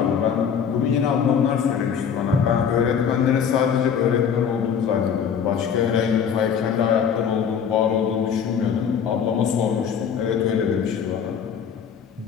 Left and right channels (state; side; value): quieter; right; 7.4 dB